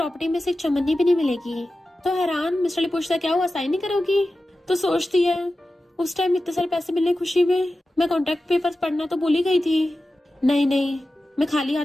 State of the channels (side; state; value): both; normal; correlation 0.94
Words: में से एक चमन्नी भी नहीं मिलेगी। तो हैरान मिस्टर ली पूछता, क्या हुआ, साइन नहीं करोगी? तो सोचती है, उस टाइम इतने सारे पैसे मिलने खुशी में मैं कॉन्ट्रैक्ट पेपर्स पढ़ना तो भूल ही गई थी। नहीं, मैं खाली हाथ